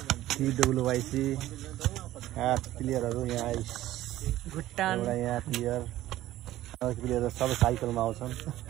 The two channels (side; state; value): left; quieter; 14.9 dB